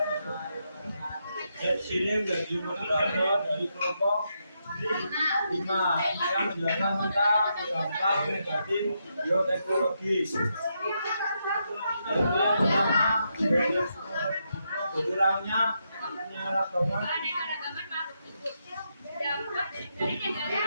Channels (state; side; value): inverted; both; correlation -0.81